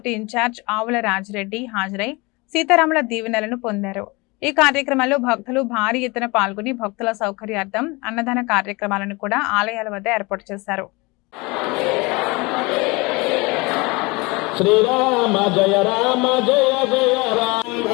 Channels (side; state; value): right; quieter; 25.4 dB